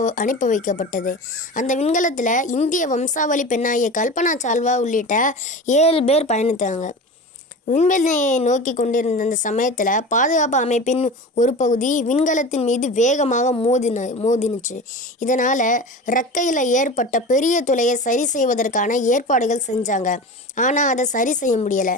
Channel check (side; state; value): both; normal; correlation 0.32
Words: வைக்கப்பட்டது. அந்த விண்கலத்தில் இந்திய வம்சாவளி பெண்ணாகிய கல்பனா சாவ்லா உள்ளிட்ட 7 பேர் பயணித்தாங்க. விண்வெளியை நோக்கி கொண்டிருந்த அந்த சமயத்தில் பாதுகாப்பு அமைப்பின் ஒரு பகுதி விண்கலத்தின் மீது வேகமாக மோதினுச்சு. இதனால் இறக்கையில் ஏற்பட்ட பெரிய துளையை சரி செய்வதற்கான ஏற்பாடுகள் செஞ்சாங்க. ஆனால் அதை சரி செய்ய முடியலை.